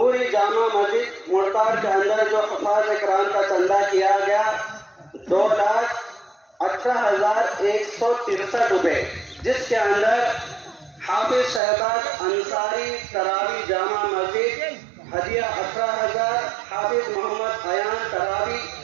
جامع مسجد مڑتاڑ کے اندر جو حفاظ کرام کا چندہ کیا گیا 2,18,163 روپے، جس کے اندر حافظ شہباز انصاری تراوی جامع مسجد ہدیہ 18,000، حافظ محمد ایان تراوی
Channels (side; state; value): left; drops out; at 11.6 s